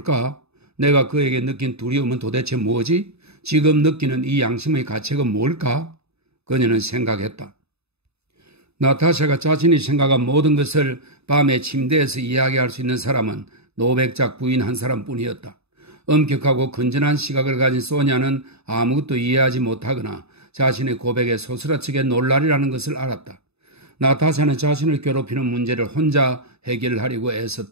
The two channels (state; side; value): late; left; 0.79 ms